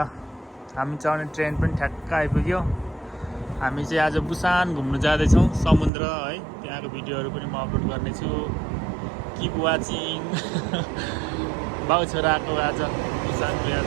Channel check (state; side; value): drops out; left; at 5.9 s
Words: हामी चढ्ने ट्रेन पनि ठ्याक्क आइपुग्यो। हामी चाहिँ आज बुसान घुम्नु जाँदैछौँ समुद्र है। त्यहाँको भिडियोहरू पनि म अपलोड गर्नेछु। Keep watching. बाउ छोराको आज बुसानको